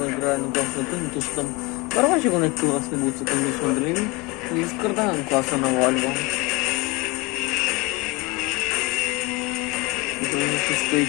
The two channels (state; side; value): quieter; right; 25.5 dB